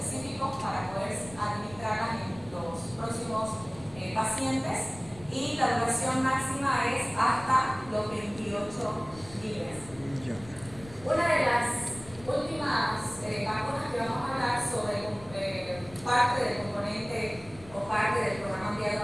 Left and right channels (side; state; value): left; noise; rumble, 19 dB below the sound